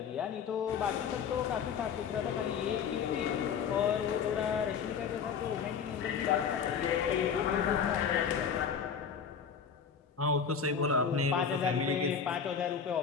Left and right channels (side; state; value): right; quieter; 6.9 dB